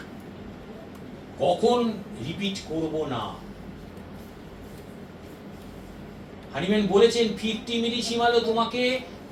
কখন রিপিট করব না। হানিম্যান বলেছেন 50 মিলিসিমালও তোমাকে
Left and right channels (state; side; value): identical; both; correlation 1.00